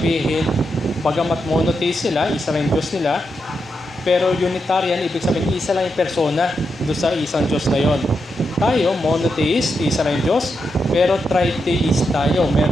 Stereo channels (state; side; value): normal; both; correlation 0.85